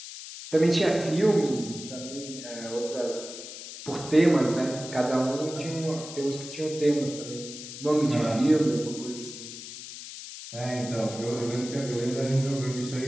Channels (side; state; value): left; noise; hiss, 11 dB below the sound